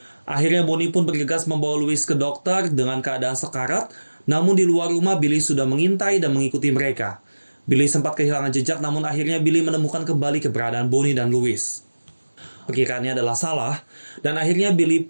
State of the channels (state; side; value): inverted; both; correlation -1.00